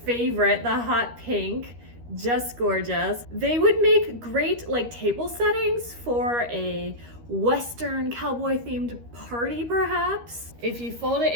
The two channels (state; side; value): late; left; 13 ms